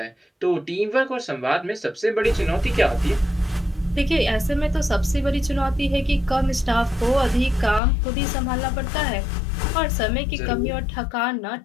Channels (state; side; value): drops out; right; at 7.8 s